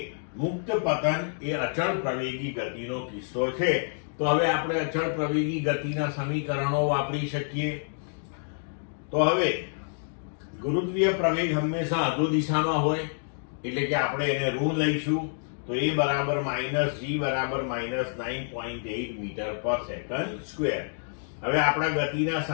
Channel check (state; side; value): silent; right; digital silence